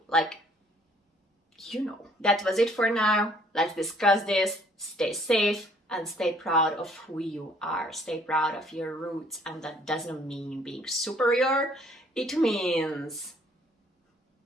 That was it for now. Let's discuss this. Stay safe and stay proud of who you are. Stay proud of your roots, and that doesn't mean being superior. It means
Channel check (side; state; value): both; normal; correlation 0.61